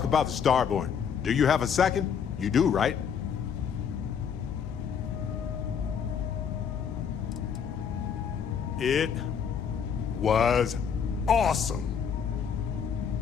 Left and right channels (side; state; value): right; quieter; 7.3 dB